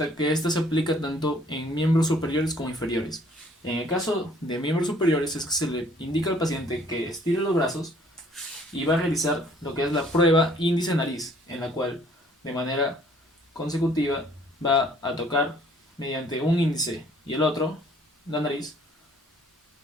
que esta se aplica tanto en miembros superiores como inferiores. En el caso de miembros superiores es que se le indica al paciente que estire los brazos y va a realizar lo que es la prueba índice-nariz, en la cual de manera consecutiva va a tocar mediante un índice y el otro la nariz,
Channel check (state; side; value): normal; both; correlation 0.58